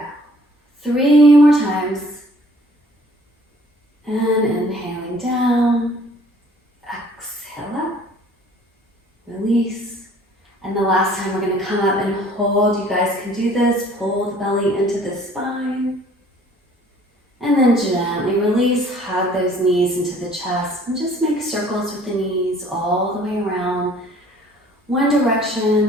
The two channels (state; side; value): normal; both; correlation 0.55